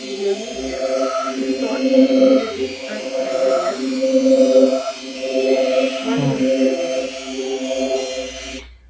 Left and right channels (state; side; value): identical; both; correlation 1.00